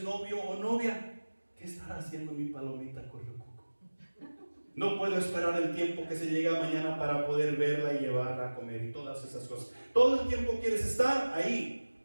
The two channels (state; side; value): inverted; both; correlation -1.00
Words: novio o novia, ¿qué estará haciendo mi palomita correcuco? No puedo esperar el tiempo que se llega mañana para poder verla y llevarla a comer y todas esas cosas. Todo el tiempo quieres estar